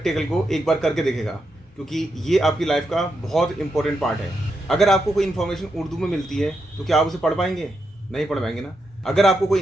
को एक बार करके देखेगा, क्योंकि ये आपकी लाइफ का बहुत इंपॉर्टेंट पार्ट है। अगर आपको कोई इन्फॉर्मेशन उर्दू में मिलती है तो क्या आप उसे पढ़ पाएंगे? नहीं पढ़ पाएंगे ना। अगर आपको कोई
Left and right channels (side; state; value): both; normal; correlation 0.83